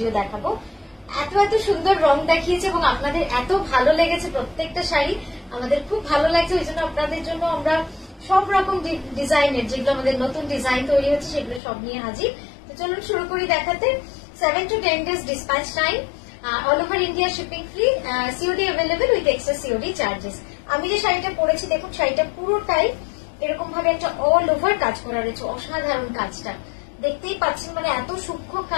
দেখাবো। এত সুন্দর রং দেখিয়েছে এবং আপনাদের এত ভালো লেগেছে প্রত্যেকটা শাড়ি, আমাদের খুব ভালো লাগছে। ওই জন্য আপনাদের জন্য আমরা সব রকম ডিজাইনের, যেগুলো আমাদের নতুন ডিজাইন তৈরি হচ্ছে সেগুলো সব নিয়ে হাজির। তো চলুন শুরু করি দেখাতে। 7 to 10 days dispatch time, all over India shipping free, COD available with extra COD charges। আমি যে শাড়িটা পরেছি দেখুন, শাড়িটা পুরোটাই এরকম ভাবে একটা অল ওভার কাজ করা রয়েছে। অসাধারণ কাজটা দেখতেই পাচ্ছেন, মানে এত সূক্ষ্ম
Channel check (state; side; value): drops out; right; at 11.6 s